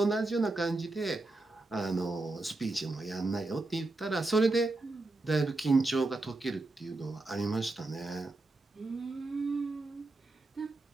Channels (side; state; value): left; quieter; 3.0 dB